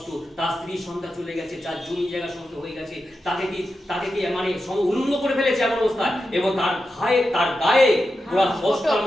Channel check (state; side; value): normal; both; correlation 0.90